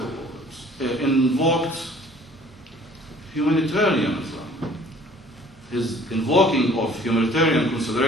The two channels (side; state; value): both; normal; correlation 0.53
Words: invoked humanitarianism. His invoking of humanitarian